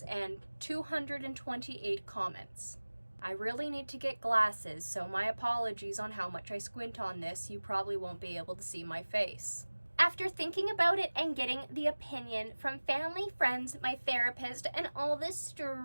and 228 comments. I really need to get glasses, so my apologies on how much I squint on this. You probably won't be able to see my face. After thinking about it and getting the opinion from family, friends, my therapist, and all the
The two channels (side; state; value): both; inverted; correlation -1.00